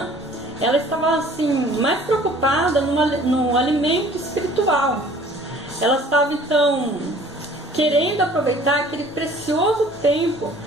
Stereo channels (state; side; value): normal; both; correlation 0.51